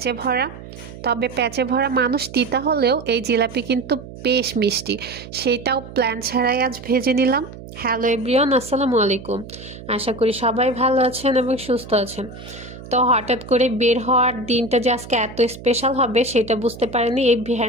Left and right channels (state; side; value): noise; right; hum, 15 dB below the sound